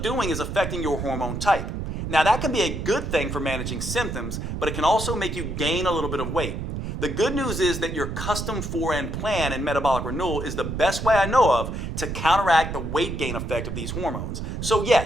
doing is affecting your hormone type. Now, that can be a good thing for managing symptoms, but it can also make you gain a little bit of weight. The good news is that your custom 4N plan in metabolic renewal is the best way I know of to counteract the weight gain effect of these hormones. So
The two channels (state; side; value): noise; right; rumble, 5 dB below the sound